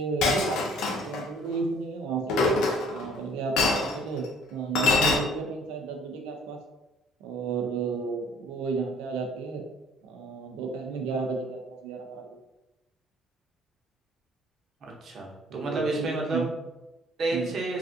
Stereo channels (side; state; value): both; normal; correlation 0.56